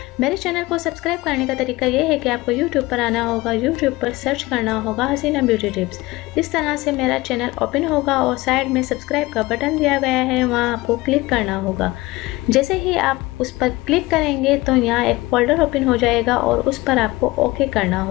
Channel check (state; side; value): quieter; right; 20.4 dB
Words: मेरे चैनल को सब्सक्राइब करने का तरीका ये है कि आपको यूट्यूब पर आना होगा, यूट्यूब पर सर्च करना होगा हसीना ब्यूटी टिप्स। इस तरह से मेरा चैनल ओपन होगा और साइड में सब्सक्राइब का बटन दिया गया है, वहाँ आपको क्लिक करना होगा। जैसे ही आप उस पर क्लिक करेंगे तो यहाँ एक फोल्डर ओपन हो जाएगा और उस पर आपको ओके करना